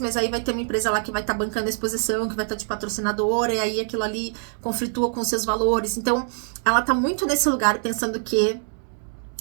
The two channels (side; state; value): left; silent; digital silence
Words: mas aí vai ter uma empresa lá que vai estar bancando a exposição, que vai estar de patrocinadora, e aí aquilo ali conflitua com os seus valores. Então, ela tá muito nesse lugar pensando que